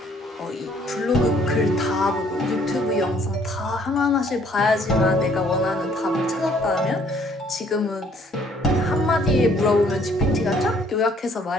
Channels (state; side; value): normal; both; correlation 0.62